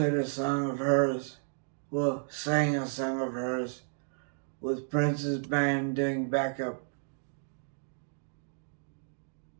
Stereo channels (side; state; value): left; silent; digital silence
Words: a song of hers. Well, sang a song of hers with Prince's band doing backup.